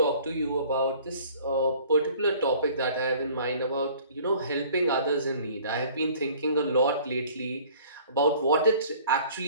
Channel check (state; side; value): inverted; both; correlation -0.51